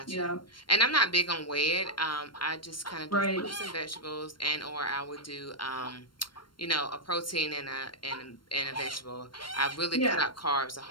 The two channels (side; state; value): right; late; 0.72 ms